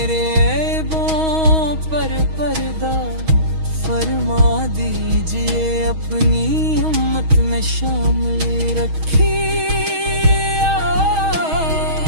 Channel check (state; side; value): late; left; 6.3 ms